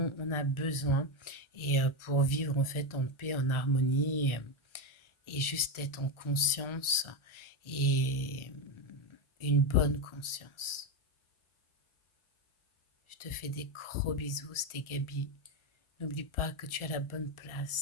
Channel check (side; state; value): right; late; 1.4 ms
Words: on a besoin et pour vivre en fait en paix, en harmonie et juste être en conscience et une bonne conscience. Je te fais des gros bisous, c'était Gabi. N'oublie pas que tu as la bonne